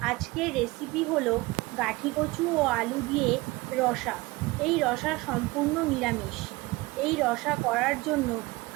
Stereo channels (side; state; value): left; quieter; 22.0 dB